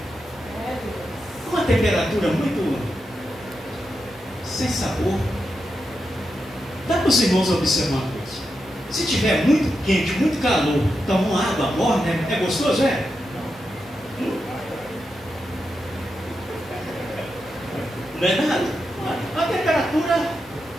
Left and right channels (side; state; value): both; normal; correlation 0.87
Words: Uma temperatura muito sem sabor. Dá para os irmãos observar uma coisa. Se tiver muito quente, muito calor, toma uma água morna, é gostoso, é? Não é nada. A temperatura,